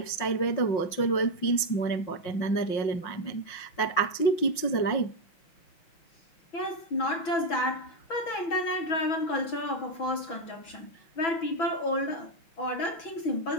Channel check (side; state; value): right; late; 5.6 ms